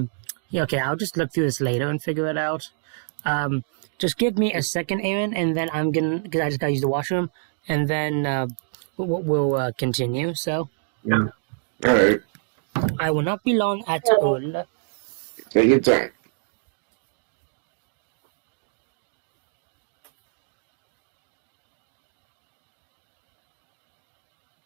okay, I'll just look through this later and figure it out. Just give me a second, Aaron, and then because I just gotta use the washroom, and then we'll continue, so. Yeah. Alright. I will not be long at all. Take your time.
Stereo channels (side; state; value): left; silent; digital silence